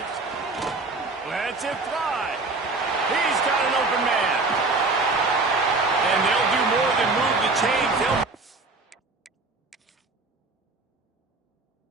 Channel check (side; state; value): left; quieter; 3.5 dB